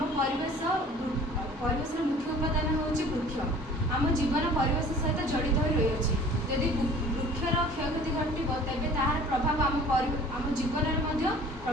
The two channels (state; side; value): normal; both; correlation 0.47